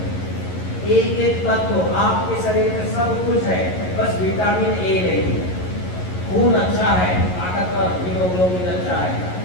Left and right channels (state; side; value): late; right; 11 ms